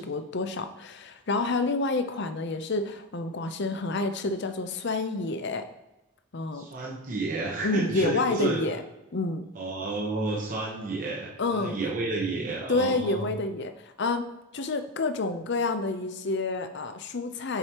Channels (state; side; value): normal; both; correlation 0.14